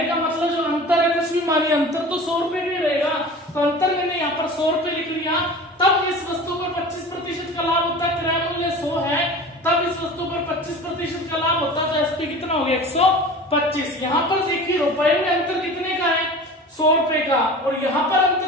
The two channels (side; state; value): both; normal; correlation 0.37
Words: का मतलब जो अंतर है, कुछ भी मानिए अंतर तो 100 रुपए भी रहेगा, तो अंतर मैंने यहाँ पर 100 रुपए लिख लिया। तब इस वस्तु पर 25% का लाभ होता है, क्रय मूल्य 100 है, तब इस वस्तु पर 25% का लाभ होता है, तो SP कितना हो गया 125। यहाँ पर देखिए रुपए में अंतर कितने का है, 100 रुपए का, और यहाँ पर